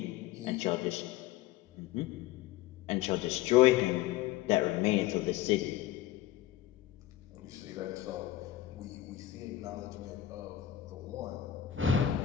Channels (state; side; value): quieter; right; 12.8 dB